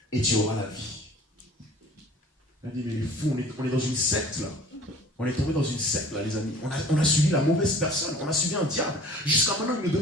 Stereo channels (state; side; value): normal; both; correlation 0.47